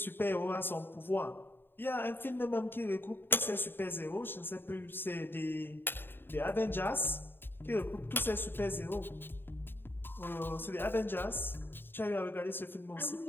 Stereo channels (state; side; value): late; right; 0.099 ms